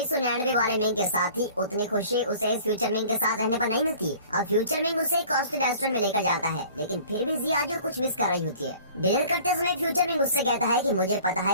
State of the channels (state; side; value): inverted; both; correlation -0.48